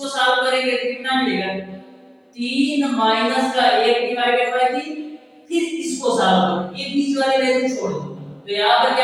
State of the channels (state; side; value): identical; both; correlation 1.00